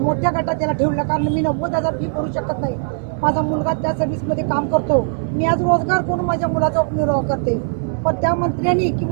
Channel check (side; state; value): left; silent; 66 dB below the other